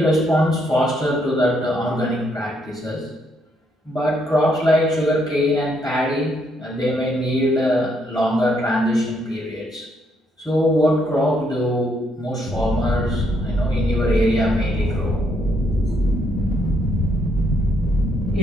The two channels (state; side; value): normal; both; correlation 0.74